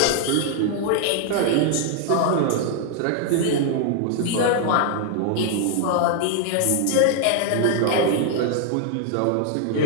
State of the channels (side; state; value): both; different; correlation 0.00